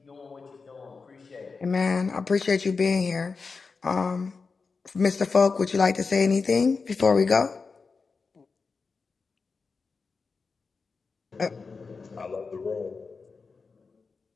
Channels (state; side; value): quieter; right; 4.6 dB